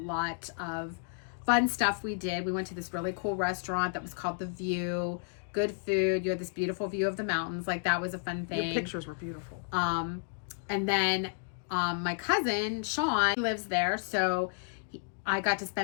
of fun stuff we did. We went to this really cool restaurant that was called The View. Good food. You had this beautiful view of the mountains. Like, that was a fun thing. Your pictures were beautiful. And then my cousin Sean lives there, so I got to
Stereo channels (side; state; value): right; silent; digital silence